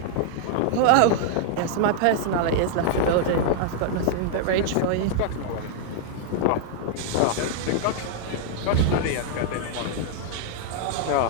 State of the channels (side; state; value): both; different; correlation -0.01